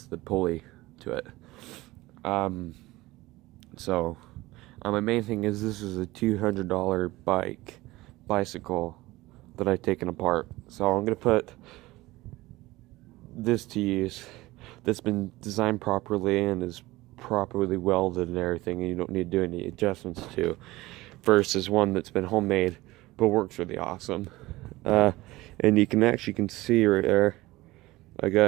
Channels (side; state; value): left; quieter; 19.2 dB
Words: the pulley to it. So my main thing is, this is a $200 bicycle that I've taken apart. So I'm gonna put this to use, that's been designed properly and is properly welded and everything, and you don't need to do any adjustments to, versus one that's been homemade but works really awesome. And you can see right there, I